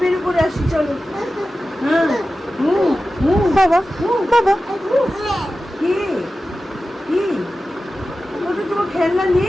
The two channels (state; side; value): normal; both; correlation 0.94